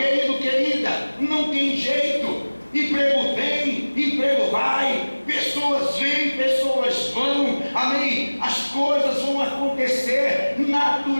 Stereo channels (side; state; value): both; inverted; correlation -1.00